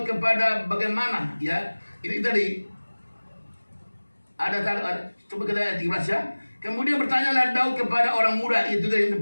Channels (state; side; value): inverted; both; correlation -1.00